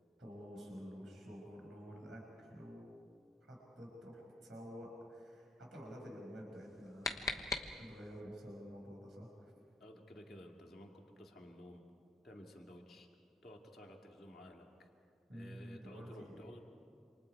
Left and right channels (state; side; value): normal; both; correlation 0.66